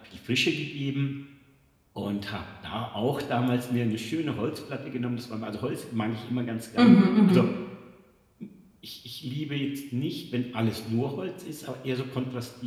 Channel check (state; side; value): identical; both; correlation 1.00